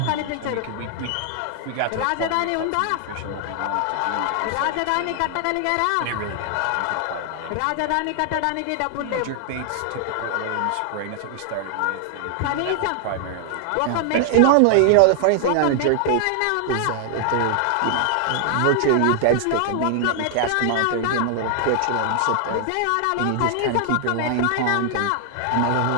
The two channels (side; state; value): both; different; correlation 0.00